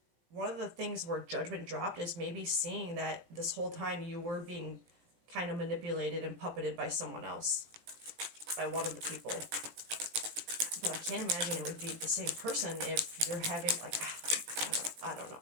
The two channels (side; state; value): left; late; 17 ms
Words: the things where judgment dropped is maybe seeing that this whole time you were being kind of manipulated and puppeted by someone else, by one of the people. But I can't imagine it would be the same person if you're having, like, I don't know.